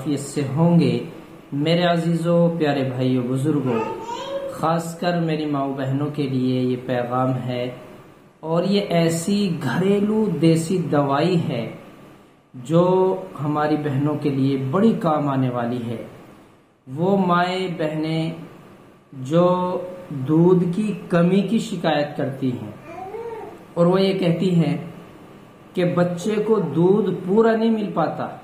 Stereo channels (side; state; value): both; identical; correlation 1.00